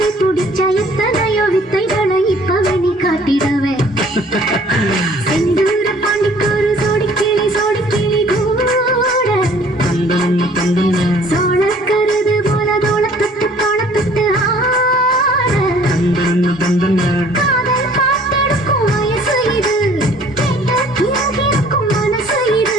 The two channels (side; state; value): both; normal; correlation 0.55